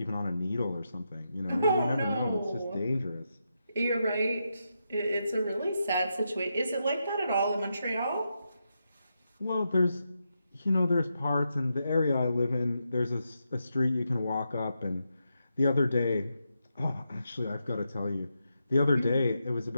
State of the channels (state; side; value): inverted; both; correlation -0.85